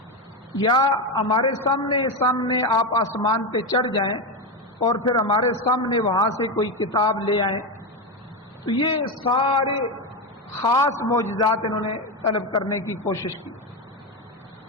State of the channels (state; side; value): normal; both; correlation 0.12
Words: یا ہمارے سامنے آپ آسمان پہ چڑھ جائیں اور پھر ہمارے سامنے وہاں سے کوئی کتاب لے آئیں۔ تو یہ سارے خاص معجزات انہوں نے طلب کرنے کی کوشش کی،